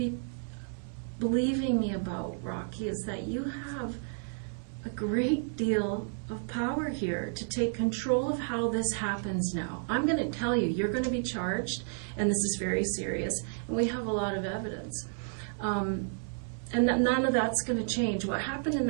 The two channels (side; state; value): left; silent; 57 dB below the other